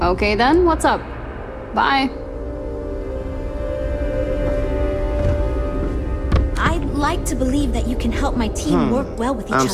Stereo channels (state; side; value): identical; both; correlation 1.00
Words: Okay then, what's up? Bye. I'd like to believe that you can help my team work well with each other I'm